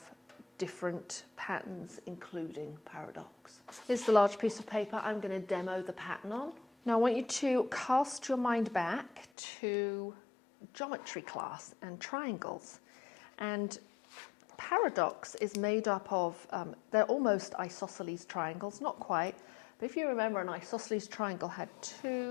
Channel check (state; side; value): drops out; right; at 9.2 s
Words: different patterns including Paradox. Here's the large piece of paper I'm going to demo the pattern on. Now I want you to cast your mind back to geometry class and triangles, and Paradox is made up of, they're almost isosceles triangles, not quite, but if you remember, an isosceles triangle had